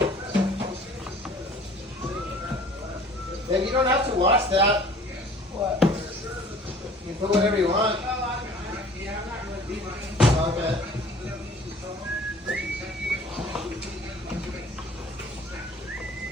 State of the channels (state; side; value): normal; both; correlation 0.49